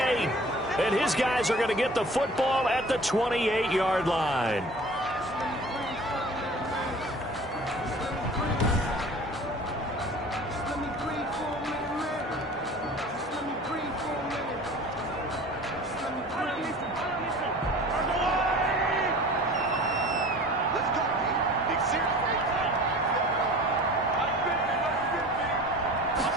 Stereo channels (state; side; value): normal; both; correlation 0.43